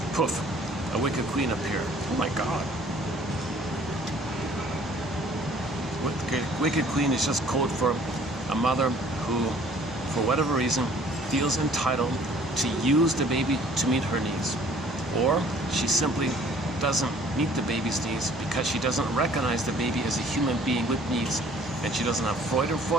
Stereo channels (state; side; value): normal; both; correlation 0.55